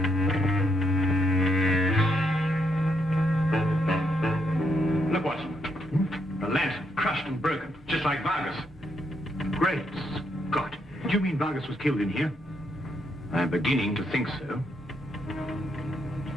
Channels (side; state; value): both; normal; correlation 0.77